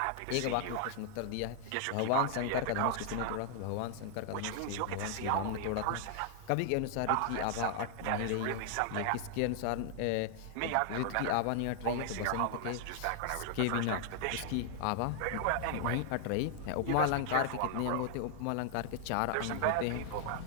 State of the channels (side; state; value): both; different; correlation 0.00